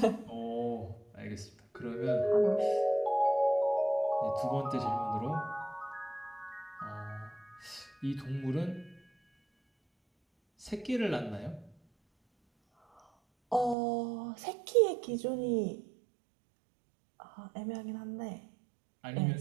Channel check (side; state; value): left; drops out; at 13.8 s